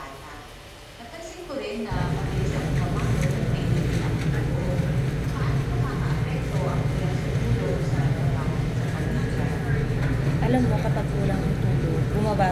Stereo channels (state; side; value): identical; both; correlation 1.00